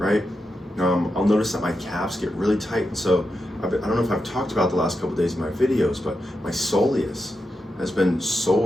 I'll notice that my calves get really tight. And so I don't know if I've talked about the last couple of days in my videos, but my soleus has been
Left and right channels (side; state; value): both; normal; correlation 0.87